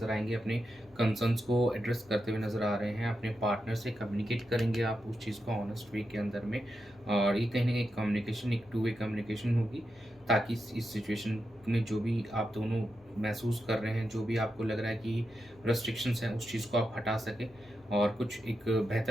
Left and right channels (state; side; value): normal; both; correlation 0.87